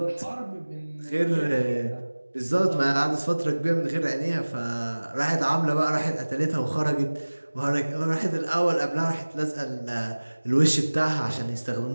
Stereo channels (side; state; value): both; inverted; correlation -1.00